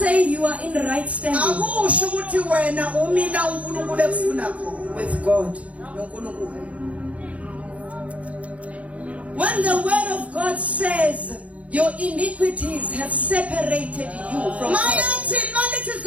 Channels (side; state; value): left; late; 0.065 ms